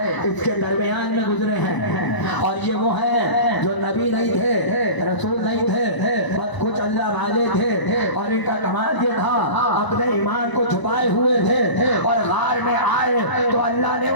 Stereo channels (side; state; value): right; late; 1.0 ms